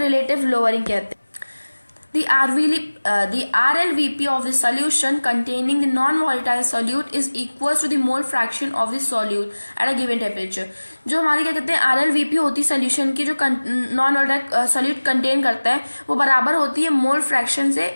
लोअरिंग कहते हैं. The RLVP of the solution containing the non-volatile solute is equal to the mole fraction of the solute at a given temperature. जो हमारी क्या कहते हैं RLVP होती है सोल्यूशन की जो नॉन वोलेटाइल सॉल्यूट कंटेन करता है वो बराबर होती है मोल फ्रैक्शन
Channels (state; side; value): inverted; both; correlation -1.00